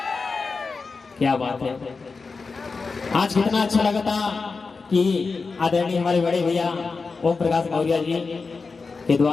क्या बात है, आज कितना अच्छा लगा था कि आदरणीय हमारे बड़े भैया ओम प्रकाश मौर्य जी के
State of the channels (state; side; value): quieter; right; 4.4 dB